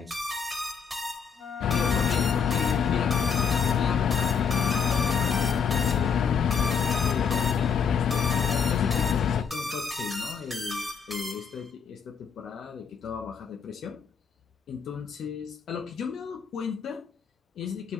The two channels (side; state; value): right; quieter; 6.5 dB